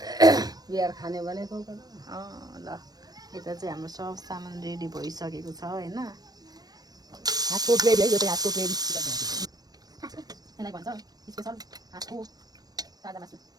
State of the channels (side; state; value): left; late; 0.19 ms